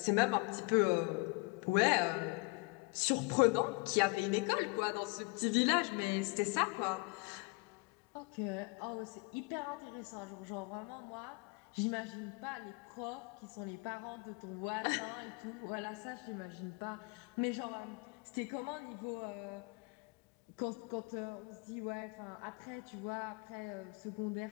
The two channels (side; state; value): right; quieter; 29.0 dB